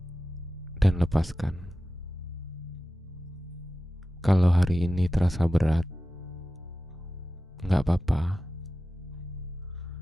dan lepaskan. Kalau hari ini terasa berat, gak apa-apa.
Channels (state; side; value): normal; both; correlation 0.94